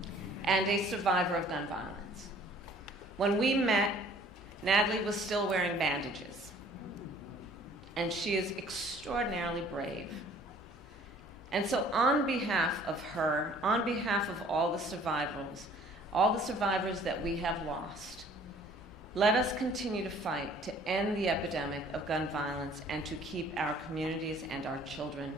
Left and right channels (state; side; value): normal; both; correlation 0.54